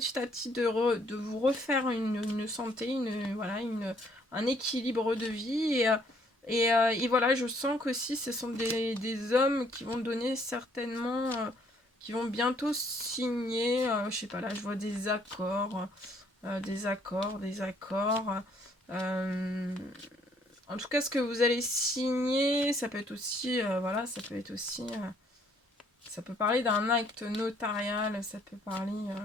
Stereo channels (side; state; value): both; normal; correlation 0.65